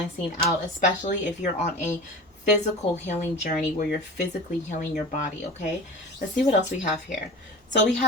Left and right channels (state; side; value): normal; both; correlation 0.34